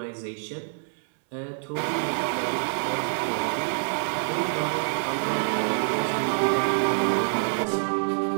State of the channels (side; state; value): left; silent; 61 dB below the other